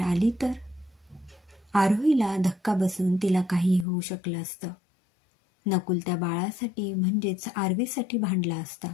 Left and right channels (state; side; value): drops out; right; at 3.9 s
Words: तर आरोहीला धक्का बसून तिला काही होऊ शकलं असतं. नकुल त्या बाळासाठी म्हणजेच आरवीसाठी भांडला असता.